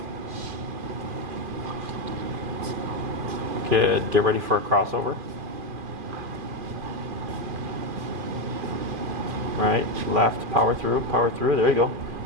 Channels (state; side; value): late; left; 2.4 ms